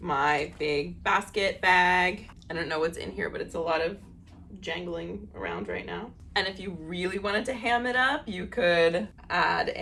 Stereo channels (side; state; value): both; identical; correlation 1.00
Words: my big basket bag. I don't know what's in here, but it's a lot of jangling around right now. And if you really wanted to ham it up, you could add